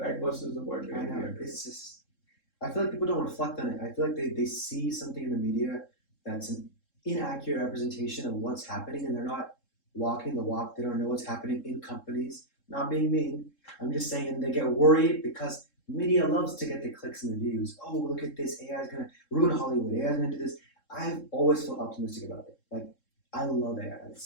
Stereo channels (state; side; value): late; right; 3.7 ms